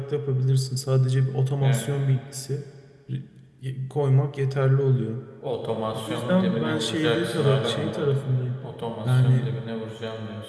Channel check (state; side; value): identical; both; correlation 1.00